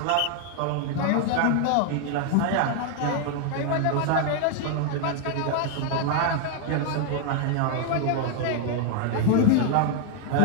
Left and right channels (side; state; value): both; different; correlation 0.00